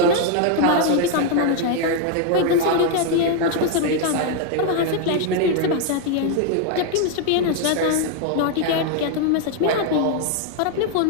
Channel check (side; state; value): both; different; correlation 0.01